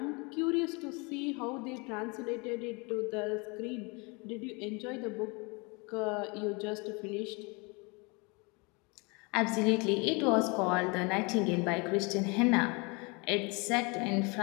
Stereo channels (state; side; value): quieter; right; 29.2 dB